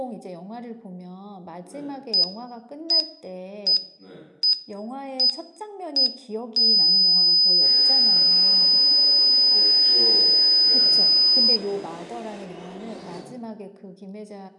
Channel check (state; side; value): identical; both; correlation 1.00